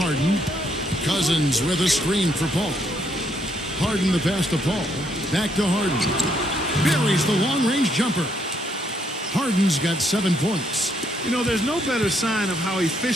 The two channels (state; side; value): normal; both; correlation 0.73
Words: Cousins with a screen for Paul. Harden the pass to Paul. Back to Harden. Buries the long-range jumper. Harden's got 7 points. You know, there's no better sign of how